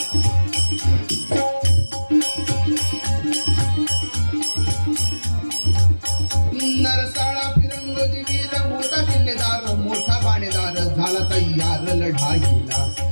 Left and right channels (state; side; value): inverted; both; correlation -1.00